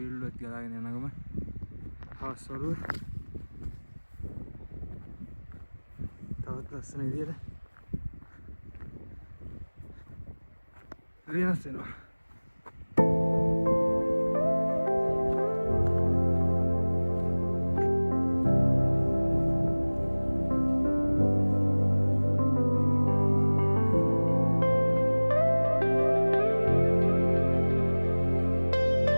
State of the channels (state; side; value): inverted; both; correlation -1.00